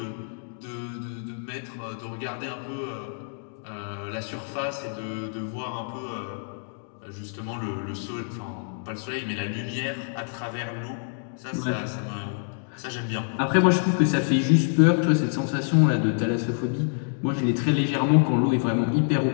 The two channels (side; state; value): right; silent; digital silence